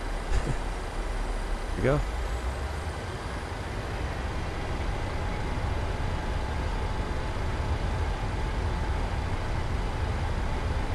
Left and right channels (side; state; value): both; identical; correlation 1.00